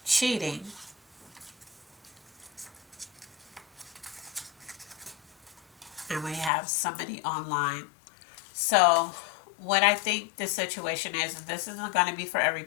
cheating. And we have somebody online. So what I think the situation is, and this isn't going to be for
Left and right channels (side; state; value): right; drops out; at 6.5 s